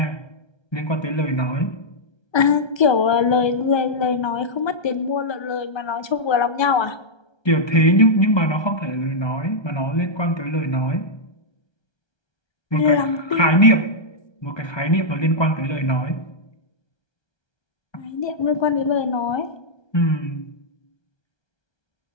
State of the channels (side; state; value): right; late; 1.2 ms